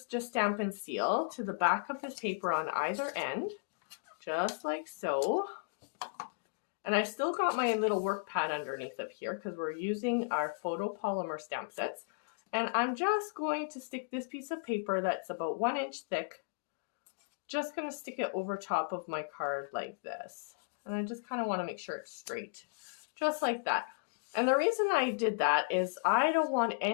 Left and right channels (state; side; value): quieter; right; 38.2 dB